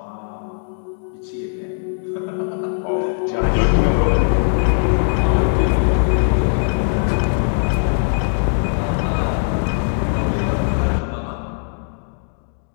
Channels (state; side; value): silent; right; 66 dB below the other